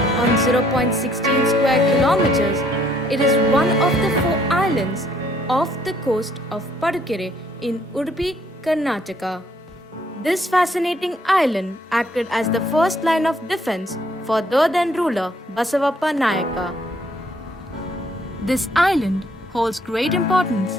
on 0.16 square kilometers, it is one of the 4 islands off the coast of Bahadurgad in Udupi, Karnataka. This fascinating island acted as the first line of defense for the then ruler Basavappa Nayaka. This island holds great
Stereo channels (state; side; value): normal; both; correlation 0.66